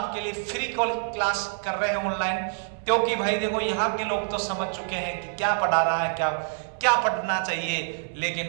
लिए फ्री क्लास कर रहे हैं ऑनलाइन, क्योंकि भाई देखो यहाँ के लोग तो समझ चुके हैं कि क्या पढ़ा रहा है, क्या पढ़ना चाहिए।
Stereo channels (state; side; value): silent; left; 61 dB below the other